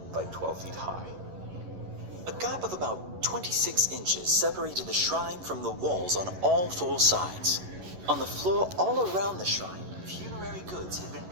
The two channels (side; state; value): left; late; 11 ms